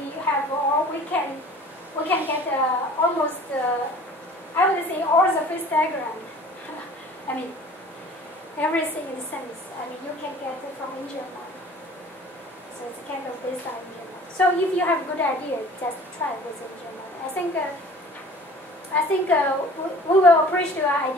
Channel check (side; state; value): both; normal; correlation 0.47